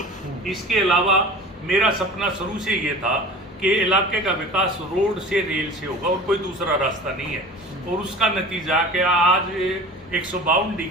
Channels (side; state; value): both; normal; correlation 0.39